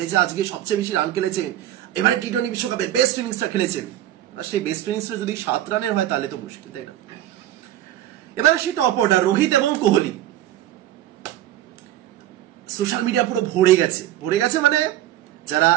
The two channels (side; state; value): left; quieter; 13.2 dB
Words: আজকে সবচেয়ে বেশি রান খেলেছেন, এবারে টি-20 বিশ্বকাপের বেস্ট ইনিংসটা খেলেছেন। আর সেই বেস্ট ইনিংসটা যদি 7 রানের হয় তাহলে তো মুশকিল, তাই না? এবার আসি টপ অর্ডার, রোহিত এবং কোহলি। সোশ্যাল মিডিয়া পুরো ভরে গেছে, মানে যারা